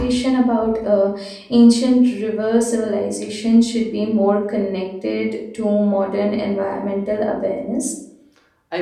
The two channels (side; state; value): both; identical; correlation 1.00